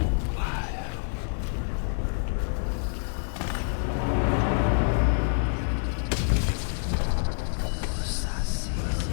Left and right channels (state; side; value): silent; right; digital silence